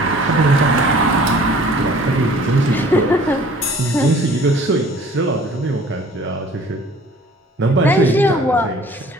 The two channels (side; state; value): both; normal; correlation 0.51